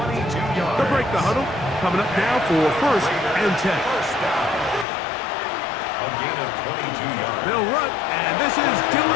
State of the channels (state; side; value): drops out; right; at 4.9 s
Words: 22 yards. They'll break the huddle. Coming up now for 1st and 10. First down. A gain of 22 yards. They'll run, and this is